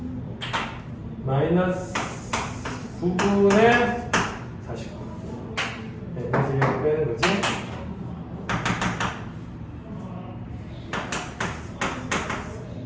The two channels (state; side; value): identical; both; correlation 1.00